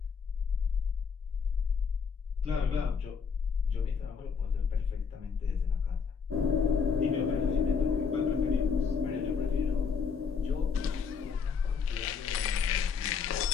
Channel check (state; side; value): quieter; right; 6.0 dB